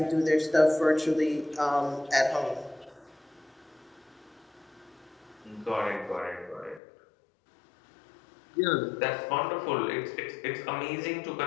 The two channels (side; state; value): right; drops out; at 6.8 s